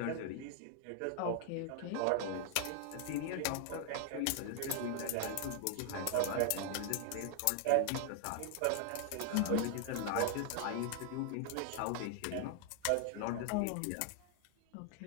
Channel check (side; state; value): both; different; correlation 0.00